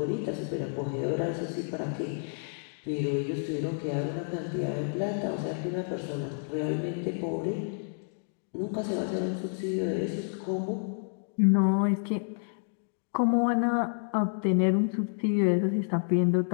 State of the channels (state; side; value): silent; right; digital silence